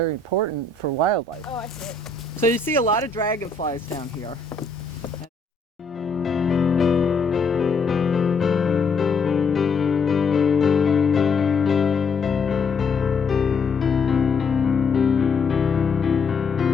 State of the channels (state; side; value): quieter; right; 4.4 dB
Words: important for wildlife. Oh, I see it. So you see a lot of dragonflies down here.